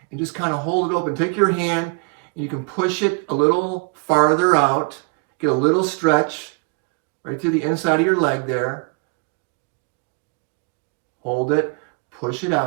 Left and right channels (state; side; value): quieter; left; 32.5 dB